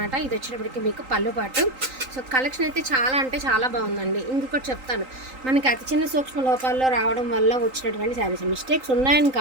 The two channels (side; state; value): left; late; 3.8 ms